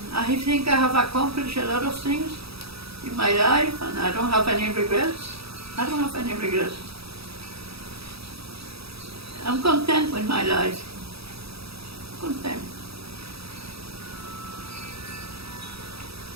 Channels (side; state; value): left; late; 0.77 ms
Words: I think I have accomplished a lot of things in my life, and I don't have any regrets. I don't have any regrets. I'm content with my life. Content.